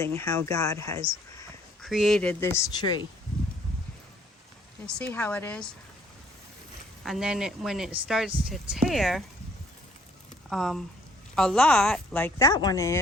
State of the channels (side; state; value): both; normal; correlation 0.62